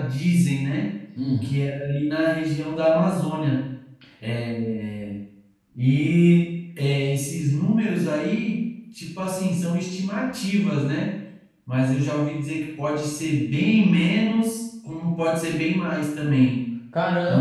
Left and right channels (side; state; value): both; identical; correlation 1.00